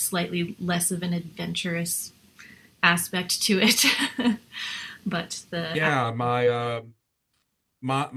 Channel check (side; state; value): both; identical; correlation 1.00